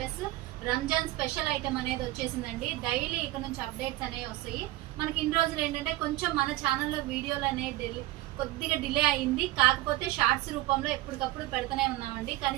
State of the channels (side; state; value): left; quieter; 17.3 dB